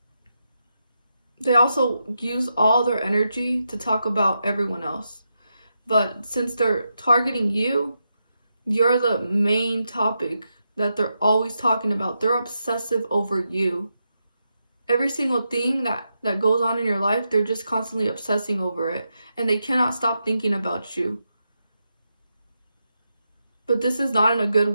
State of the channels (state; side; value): inverted; both; correlation -0.85